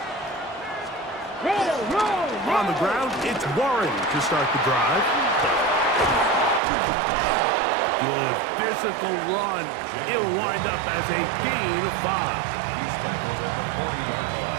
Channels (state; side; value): drops out; left; at 6.6 s